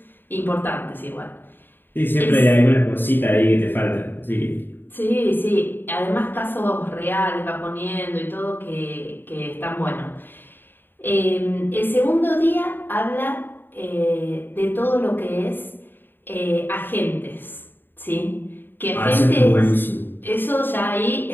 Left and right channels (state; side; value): late; right; 0.096 ms